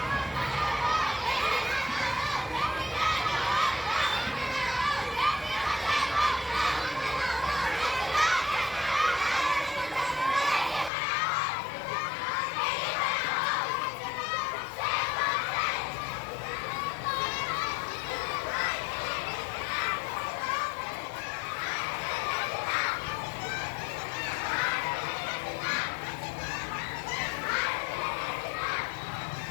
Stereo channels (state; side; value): drops out; right; at 10.9 s